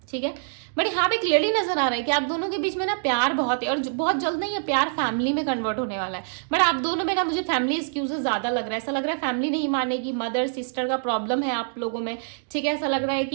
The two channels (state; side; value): silent; left; digital silence